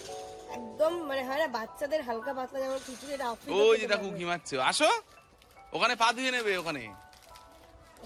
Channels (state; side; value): identical; both; correlation 1.00